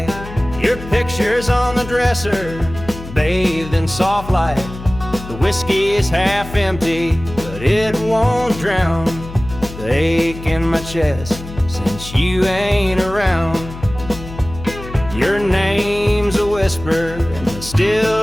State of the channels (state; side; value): noise; left; hum, 12 dB below the sound